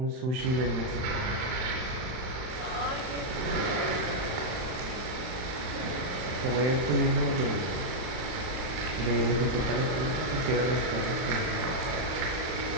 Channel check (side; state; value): left; late; 39 ms